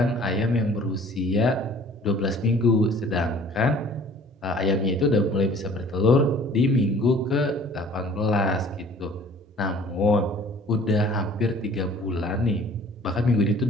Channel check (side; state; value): both; normal; correlation 0.51